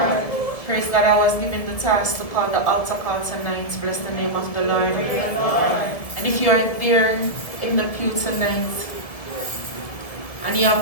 Praise God, I was given the task to call the altar call tonight. Bless the name of the Lord. And if you are there in the pew tonight, and you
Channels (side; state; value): right; late; 1.7 ms